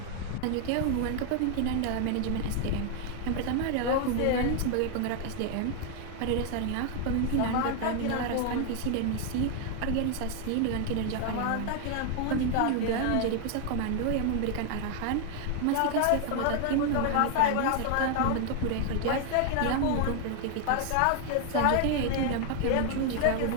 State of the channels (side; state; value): both; different; correlation 0.00